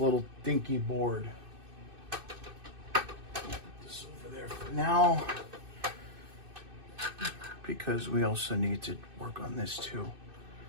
dinky board. Put this over there for now, because we also need to work on this too.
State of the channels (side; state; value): left; late; 2.6 ms